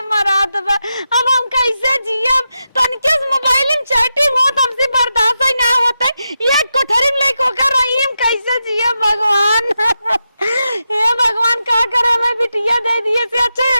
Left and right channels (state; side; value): inverted; both; correlation -0.88